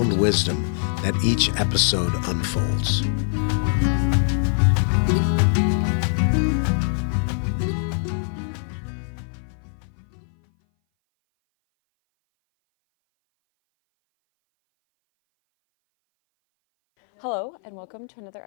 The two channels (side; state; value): right; silent; 59 dB below the other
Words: wisdom that each episode unfolds. Hello, and welcome to another